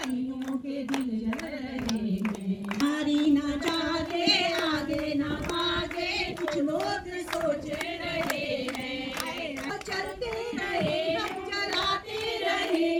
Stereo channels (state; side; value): identical; both; correlation 1.00